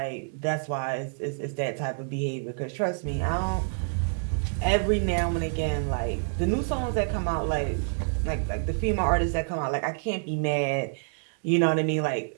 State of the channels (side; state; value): left; silent; digital silence